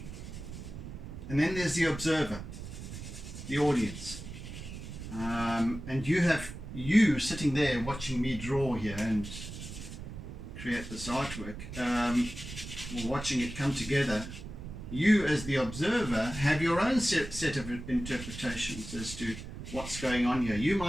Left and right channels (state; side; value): noise; right; rumble, 10 dB below the sound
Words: And then there's the observer, the audience. And you sitting there watching me draw here and create this artwork, or watching it come together. You as the observer have your own set of interpretations as to what's going on here. You